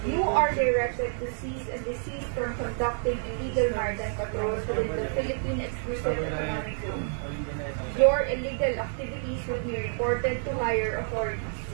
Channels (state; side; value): silent; left; digital silence